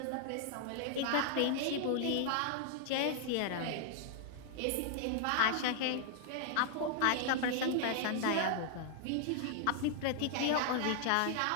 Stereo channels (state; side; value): different; both; correlation 0.00